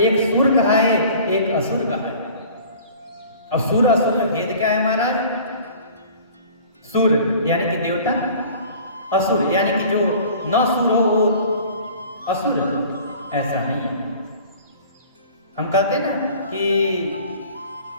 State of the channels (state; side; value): inverted; both; correlation -0.46